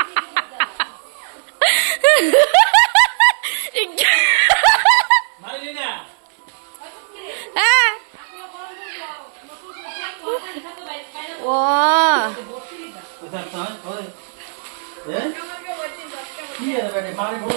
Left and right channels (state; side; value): silent; left; 59 dB below the other